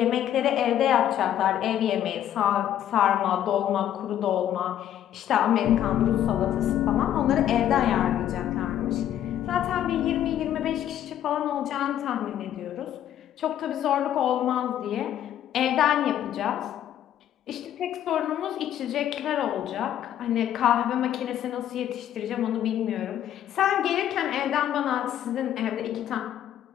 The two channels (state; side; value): quieter; right; 11.1 dB